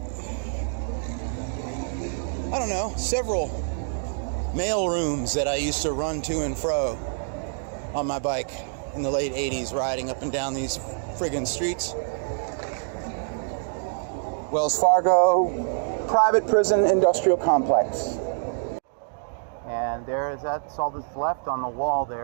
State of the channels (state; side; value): silent; left; digital silence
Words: I don't know, several mail rooms that I used to run to and fro on my bike in the late 80s, riding up and down these friggin' streets. Wells Fargo, private prison industrial complex. And that's all that's left on the wall